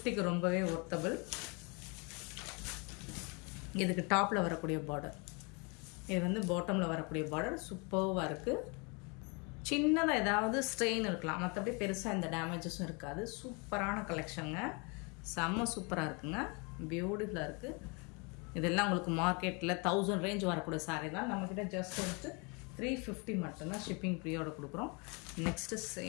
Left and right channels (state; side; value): quieter; right; 31.7 dB